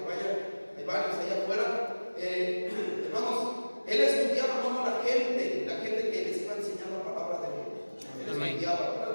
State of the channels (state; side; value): inverted; both; correlation -1.00